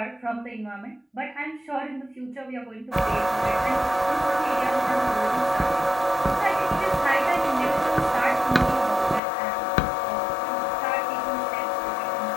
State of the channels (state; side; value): drops out; right; at 9.2 s